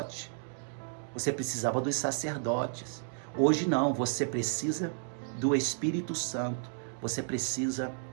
Você precisava dos sacerdotes. Hoje não, você precisa do Espírito Santo. Você precisa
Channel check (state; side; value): silent; left; digital silence